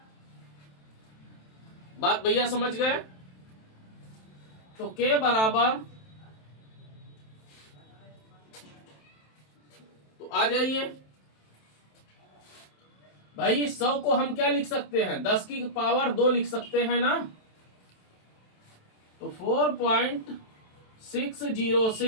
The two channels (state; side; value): late; right; 27 ms